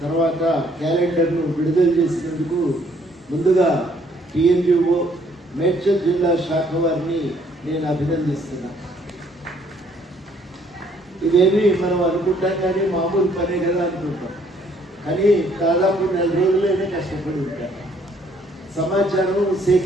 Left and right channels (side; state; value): both; normal; correlation 0.65